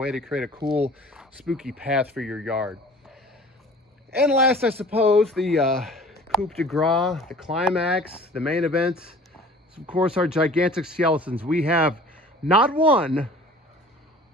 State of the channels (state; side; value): normal; both; correlation 0.46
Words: to create a cool, spooky path for your yard. And last, I suppose, the coup de grace, the climax, the main event, is of course our gigantic skeletons. We have not one,